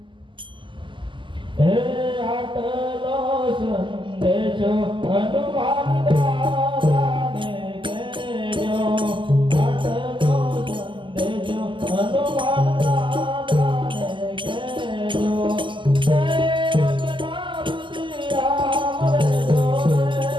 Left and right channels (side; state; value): left; late; 0.24 ms